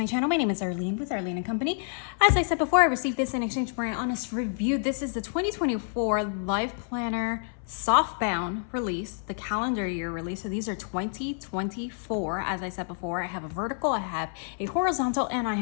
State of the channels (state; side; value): silent; right; 59 dB below the other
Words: channel, my name is Arlene with Arlene and Company. As I said before, I received this in exchange for an honest review. This is the 2024 LifePlanner Softbound release, the calendar year release. So these are 2024. As I said before, I have a vertical, I have a horizontal, and I